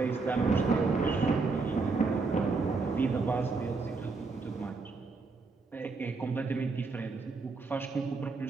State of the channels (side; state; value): left; quieter; 4.1 dB